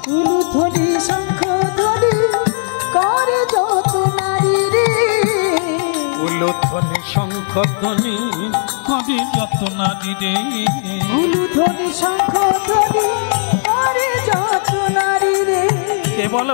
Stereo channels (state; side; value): silent; right; digital silence